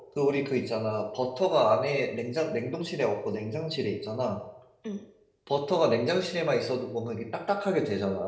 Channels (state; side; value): identical; both; correlation 1.00